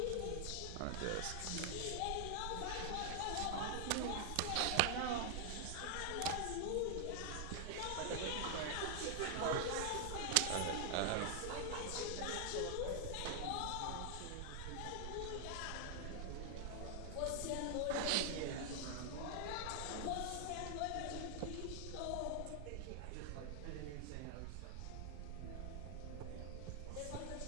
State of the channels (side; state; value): both; different; correlation 0.00